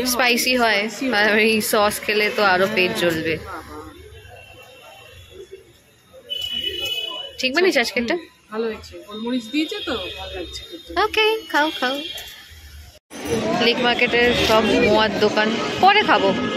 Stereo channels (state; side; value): identical; both; correlation 1.00